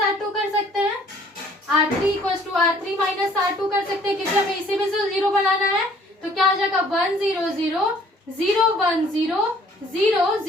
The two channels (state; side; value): normal; both; correlation 0.58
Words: R2 कर सकते हैं, R3 equals to R3 minus R2 कर सकते हैं, क्योंकि हमें इसे भी 0 बनाना है। तो क्या हो जाएगा 1 0 0 0 1 0 0